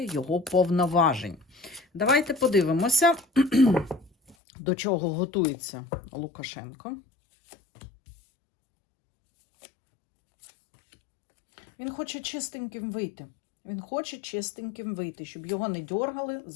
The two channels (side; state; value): right; drops out; at 4.4 s